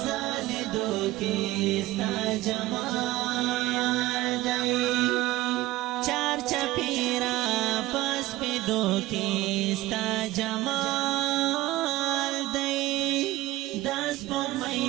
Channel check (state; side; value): quieter; left; 17.6 dB